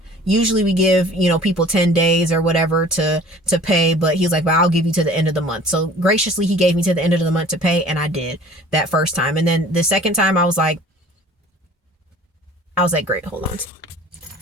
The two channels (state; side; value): normal; both; correlation 0.47